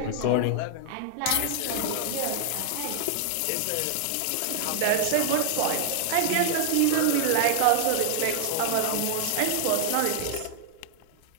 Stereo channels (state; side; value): different; both; correlation -0.01